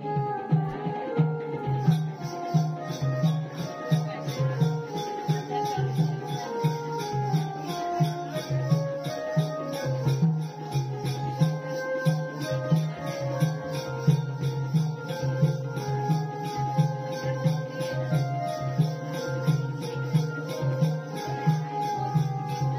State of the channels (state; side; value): identical; both; correlation 1.00